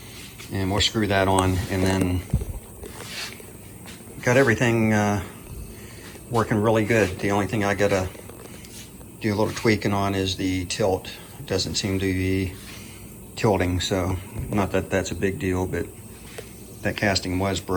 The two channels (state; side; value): identical; both; correlation 1.00